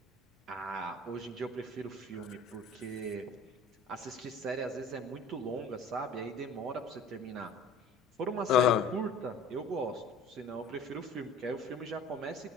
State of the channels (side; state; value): right; quieter; 3.1 dB